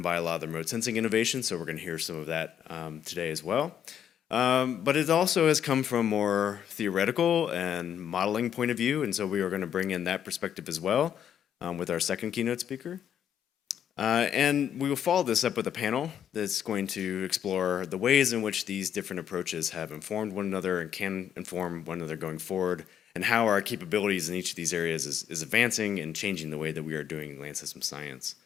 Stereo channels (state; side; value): quieter; right; 9.2 dB